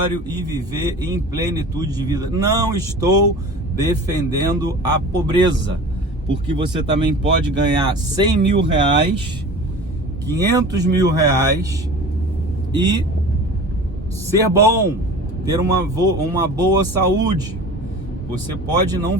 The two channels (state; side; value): normal; both; correlation 0.38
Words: e viver em plenitude de vida? Não estou defendendo a pobreza, porque você também pode ganhar 100 mil reais, 500 mil reais e ser bom, ter uma boa saúde. Você pode não